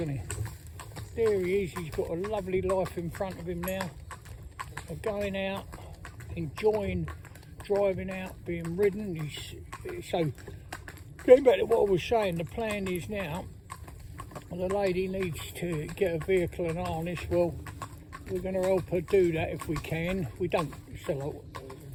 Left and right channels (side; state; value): both; identical; correlation 1.00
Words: he? there he is. He's got a lovely life in front of him now. Of going out, enjoying driving out, being ridden. So going back to what I was saying, the plan is now, the lady needs to get a vehicle and harness. Well, we're going to help her do that if we can. We don't sell